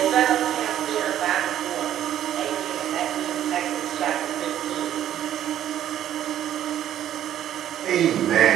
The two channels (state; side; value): quieter; left; 11.3 dB